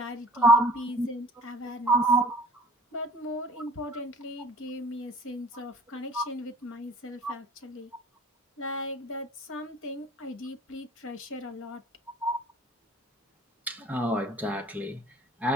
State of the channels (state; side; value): normal; both; correlation 0.49